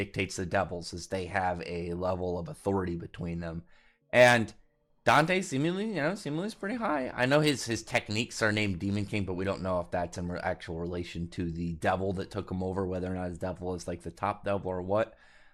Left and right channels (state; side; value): identical; both; correlation 1.00